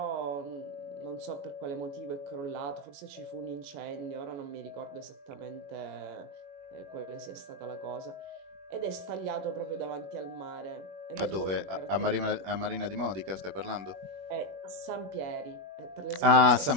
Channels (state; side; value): late; left; 21 ms